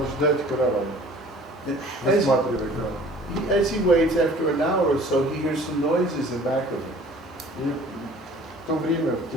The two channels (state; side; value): normal; both; correlation 0.50